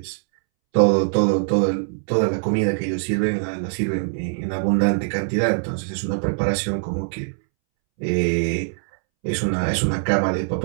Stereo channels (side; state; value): left; silent; 64 dB below the other